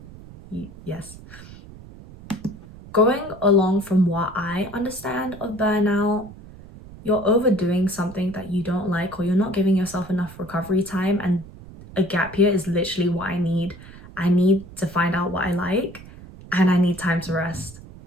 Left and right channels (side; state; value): right; noise; rumble, 18 dB below the sound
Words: Yes. Going along from what I understand of burnout, you're overdoing something that you don't like, or you're not giving yourself enough recovery time, and a gap year is literally what I need. I need to find out what I like, and I need time to rest.